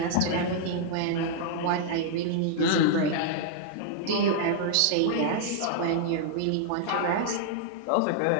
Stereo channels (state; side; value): different; both; correlation -0.01